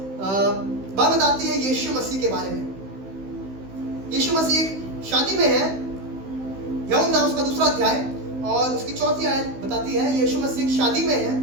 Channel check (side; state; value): left; late; 15 ms